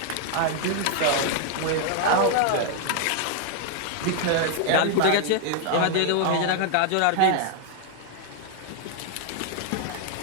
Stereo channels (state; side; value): different; both; correlation 0.00